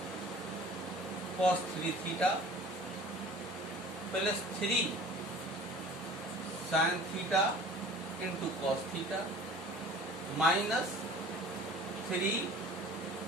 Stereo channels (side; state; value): both; normal; correlation 0.45